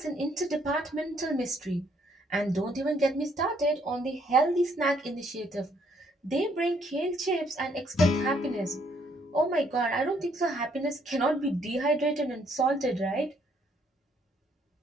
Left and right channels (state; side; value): normal; both; correlation 0.68